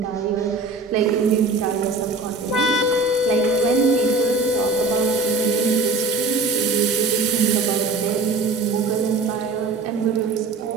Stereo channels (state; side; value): quieter; left; 3.5 dB